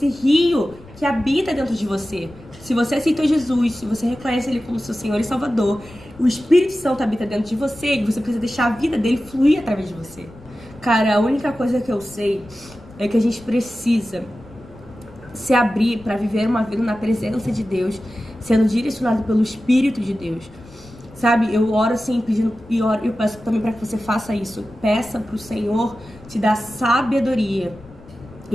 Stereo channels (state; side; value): noise; left; rumble, 22 dB below the sound